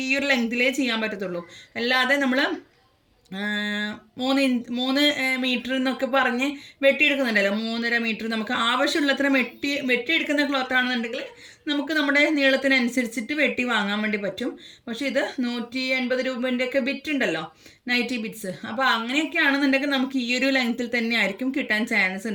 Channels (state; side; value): identical; both; correlation 1.00